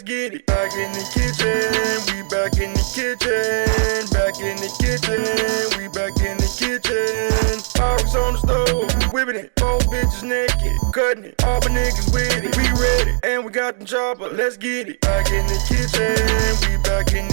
get it. Back in the kitchen, we back in the kitchen, back in the kitchen, we back in the kitchen. Pyrex on the stove, whipping it, 4 bitches naked, cutting it, all my niggas with it, we ready, and we got the chopper, let's get it. Back in the kitchen, we back in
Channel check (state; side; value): silent; left; digital silence